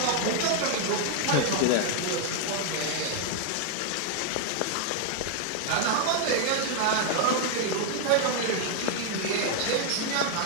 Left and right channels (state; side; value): different; both; correlation 0.00